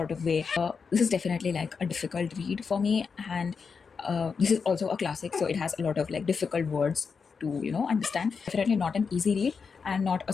of way. This is definitely like a difficult read for me, and this is also a classic, so it has a lot of like difficult words to understand. Definitely not an easy read and not a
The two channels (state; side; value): quieter; right; 5.5 dB